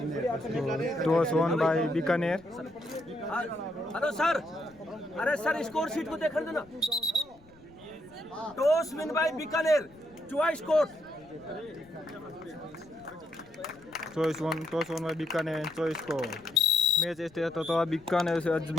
toss won by Bikaner. Hello sir, अरे सर स्कोर शीट को देख देना। Toss win by Bikaner, choice court. Choice won by Bikaner, choice को मैच स्टार्ट होता है। बीकानेर से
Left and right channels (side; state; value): left; noise; rumble, 27 dB below the sound